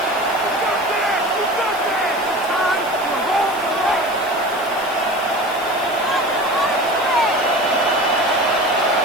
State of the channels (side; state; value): right; noise; hiss, 18 dB below the sound